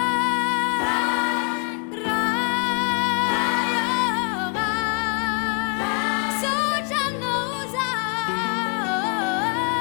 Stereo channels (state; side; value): quieter; right; 33.4 dB